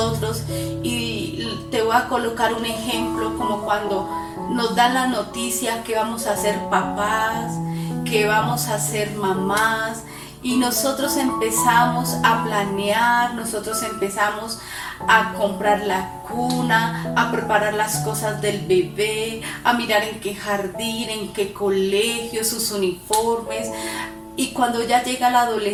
Y te voy a colocar un ejemplo, como cuando nos dan la noticia que vamos a ser papás, que vamos a ser mamás, y nosotros empezamos a planear, nosotros empezamos a comprar la cuna, a preparar las cosas del bebé, a mirar en qué jardín, en qué colegio, sus uniformes. Y cuando ya llega la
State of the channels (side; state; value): both; identical; correlation 1.00